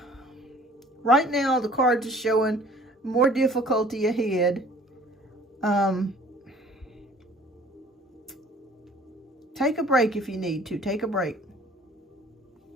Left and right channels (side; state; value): both; normal; correlation 0.52